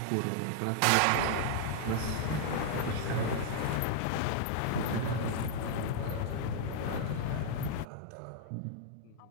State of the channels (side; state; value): both; different; correlation -0.01